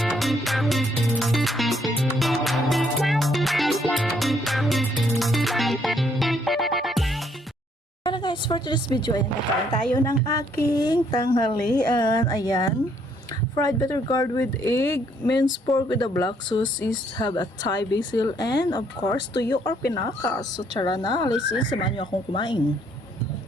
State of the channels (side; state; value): both; normal; correlation 0.68